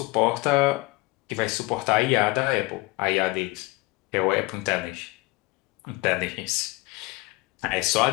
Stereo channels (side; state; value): right; quieter; 22.4 dB